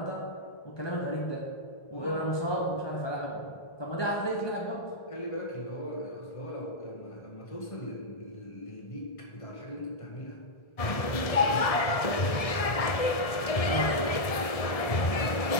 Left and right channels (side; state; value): right; late; 1.6 ms